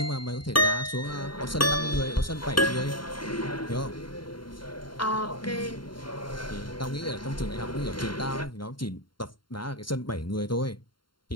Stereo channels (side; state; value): right; late; 0.72 ms